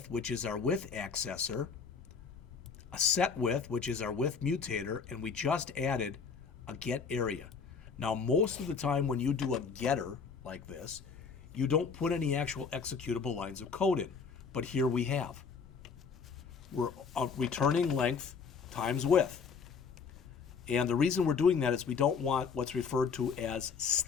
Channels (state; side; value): quieter; right; 5.7 dB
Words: which is our width accessor, a set width, which is our width mutator, and we just added a get area. Now, most of the time when you do a getter like this, you don't put any actual executable lines of code in, but here we have. We're returning length times width. And the reason we're doing that is we don't want what's referred to as